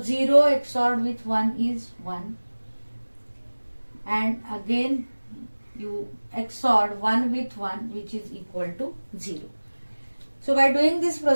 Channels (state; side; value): inverted; both; correlation -1.00